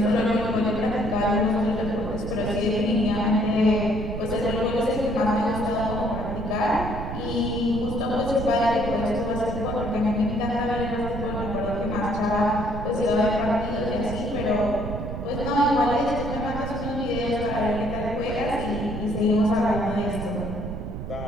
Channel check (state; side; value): noise; right; rumble, 6 dB below the sound